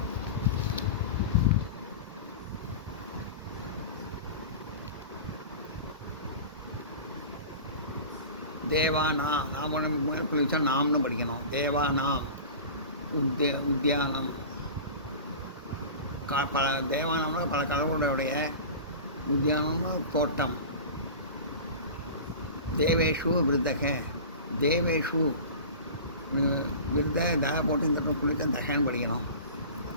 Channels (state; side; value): inverted; both; correlation -0.34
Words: தேவானா நாம் மேலே புள்ளி வச்சா நாம்னு படிக்கணும். தேவானா உத்தியானம் பல தேவானம்னா பல கடவுளுடைய உத்தியானம்னு தோட்டம். தேவேஷு விருத்தக தேவேஷு விருத தக போட்டு இந்த புள்ளித்த தகன்னு படிக்கணும்.